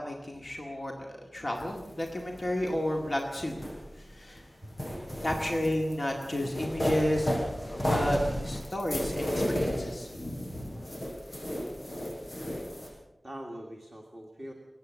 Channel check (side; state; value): both; normal; correlation 0.96